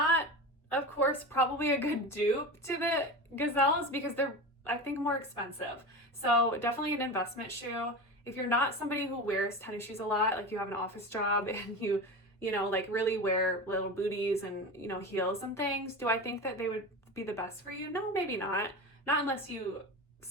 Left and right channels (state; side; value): normal; both; correlation 0.27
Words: of course, probably a good dupe to the Gazelles because they're, I think, more expensive. So definitely an investment shoe. If you're not somebody who wears tennis shoes a lot, like you have an office job and you like really wear little booties and, heels and things, do I think that they would be the best for you? No, maybe not. Not unless you